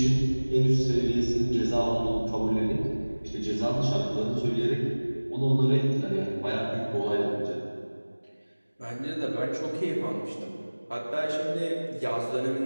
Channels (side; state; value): both; inverted; correlation -1.00